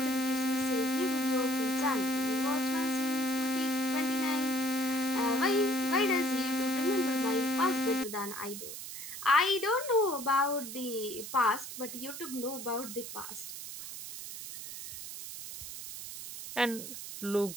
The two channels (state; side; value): noise; right; hiss, 9 dB below the sound